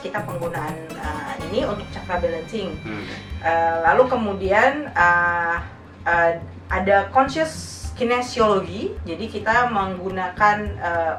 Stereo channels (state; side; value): identical; both; correlation 1.00